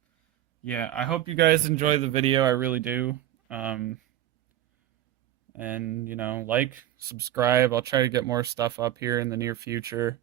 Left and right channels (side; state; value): left; quieter; 12.7 dB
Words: Yeah, I hope you guys enjoy the video. I really do. And, like, subscribe. I'll try to get more stuff up here in the near future.